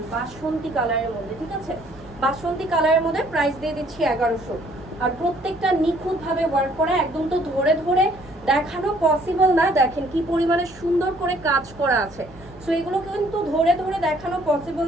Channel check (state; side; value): noise; right; hum, 22 dB below the sound